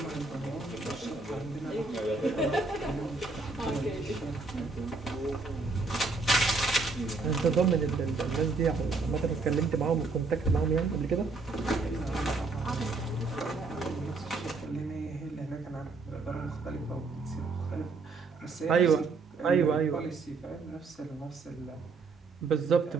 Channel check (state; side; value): quieter; left; 3.9 dB